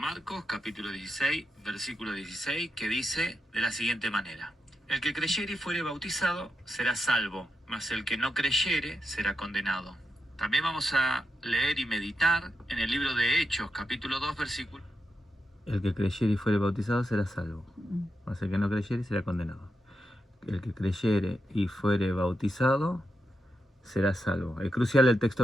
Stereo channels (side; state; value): both; normal; correlation 0.86